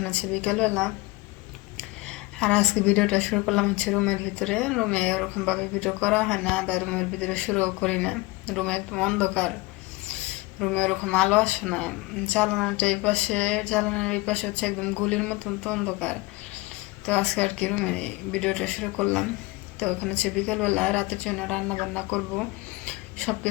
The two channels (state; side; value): quieter; right; 22.0 dB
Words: আছে বিকেলবেলা, আর আজকে ভিডিওটা শুরু করলাম হচ্ছে রুমের ভিতরে। রুমে ওরকমভাবে ভিডিও করা হয় না, বা রুমের ভিতরে শুরুও করি না। রুমে একদম অন্ধকার, রুমে ওরকম আলো আসে না। জানালার এই পাশে হচ্ছে একদম গুলির মতন তো অন্ধকার। তো আজকে আর কি রুমে ভিডিওটা শুরু করলাম। তো ওখানে হচ্ছে বিকেলবেলা রাতের জন্য রান্না বান্না করব। সব